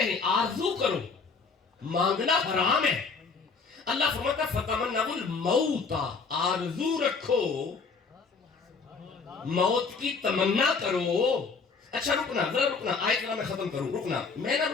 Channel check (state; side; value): quieter; right; 4.8 dB